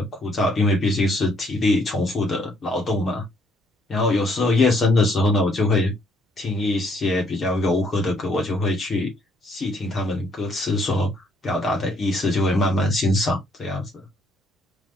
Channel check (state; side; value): normal; both; correlation 0.67